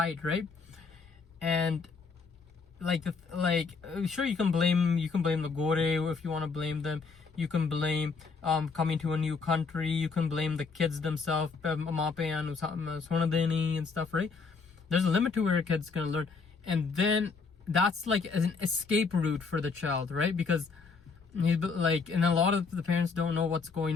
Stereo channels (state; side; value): quieter; right; 4.8 dB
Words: right? And sure, you can blame the Gore if you want to blame them. You can blame coming to a new country. You can blame the kids themselves, and stuff, right? There's a limit to where a kid's gonna learn, and then that's like an escape route for the child, right? Because and a lot of the parents don't know what's